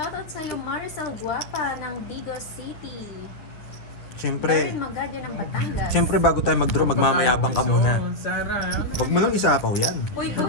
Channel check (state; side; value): late; right; 9.4 ms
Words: sa'yo, Maricel Guapa ng Digos City. Siyempre, Darren Magalia ng Batangas. siyempre bago tayo mag-draw, magmamayabang ka muna. Sarah. Huwag mo nang isapaw yan. Uy,